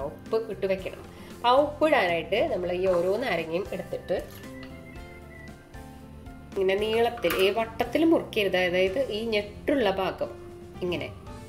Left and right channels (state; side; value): identical; both; correlation 1.00